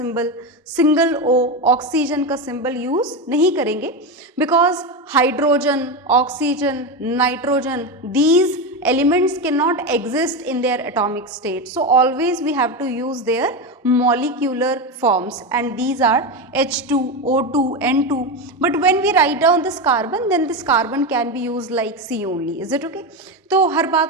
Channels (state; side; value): normal; both; correlation 0.15